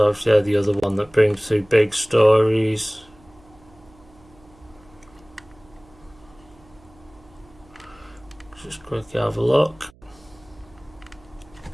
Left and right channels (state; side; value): noise; right; hum, 27 dB below the sound